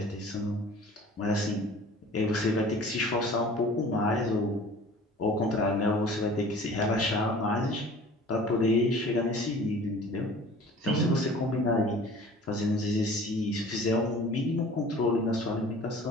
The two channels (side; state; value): both; normal; correlation 0.45